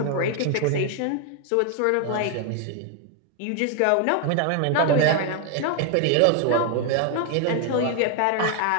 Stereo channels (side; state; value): both; different; correlation 0.00